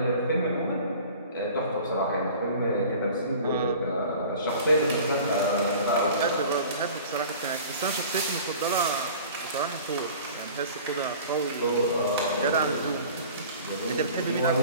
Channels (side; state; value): both; inverted; correlation -0.43